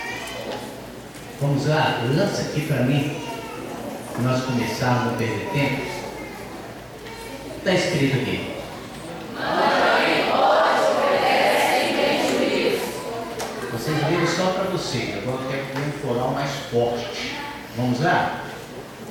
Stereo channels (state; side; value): identical; both; correlation 1.00